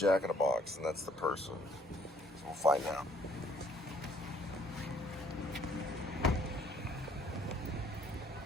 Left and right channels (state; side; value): normal; both; correlation 0.62